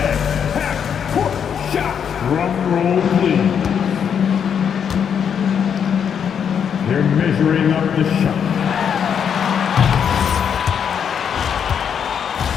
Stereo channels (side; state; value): right; quieter; 7.7 dB